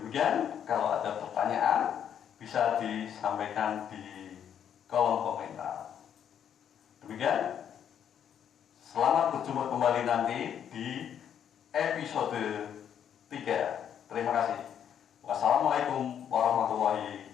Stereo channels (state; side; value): quieter; right; 9.0 dB